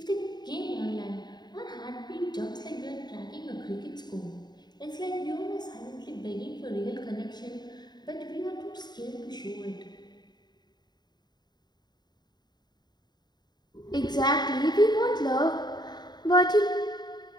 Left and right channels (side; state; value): right; late; 0.20 ms